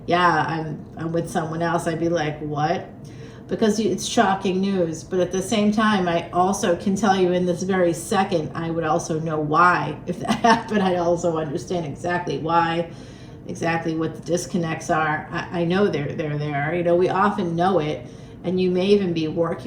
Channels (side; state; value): both; identical; correlation 1.00